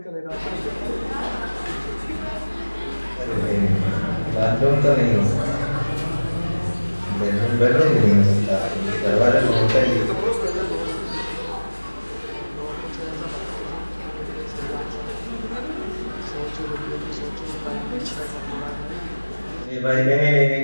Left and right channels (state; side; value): inverted; both; correlation -1.00